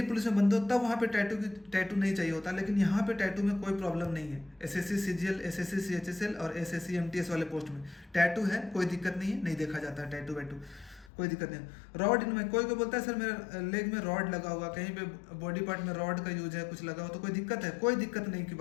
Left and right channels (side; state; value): right; drops out; at 11.1 s